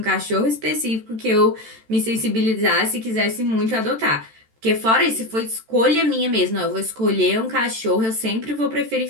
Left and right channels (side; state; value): left; late; 13 ms